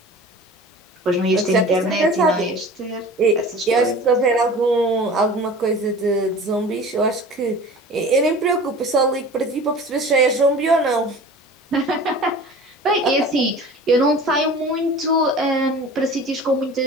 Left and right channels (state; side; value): normal; both; correlation 0.40